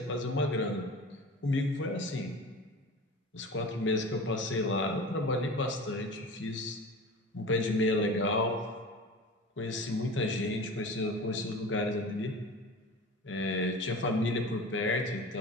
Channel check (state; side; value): normal; both; correlation 0.35